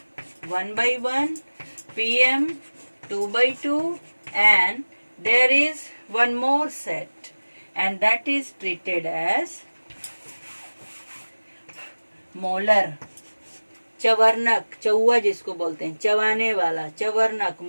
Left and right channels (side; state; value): both; inverted; correlation -1.00